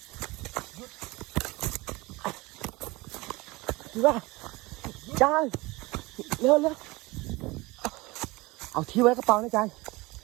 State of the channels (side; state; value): left; quieter; 22.5 dB